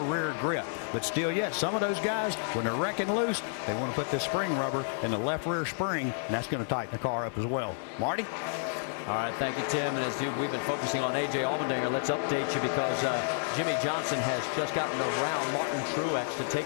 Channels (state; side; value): silent; right; 58 dB below the other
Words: grip. But still yet, some of those guys, when they're wrecking loose, they want to put this spring rubber in the left rear spring, and that's going to tighten the car up as well. Marty? All right, thank you, Tim. And as we've been focusing on A.J. Allmendinger, let's update you because Jimmy Johnson has just gotten around Martin Truex to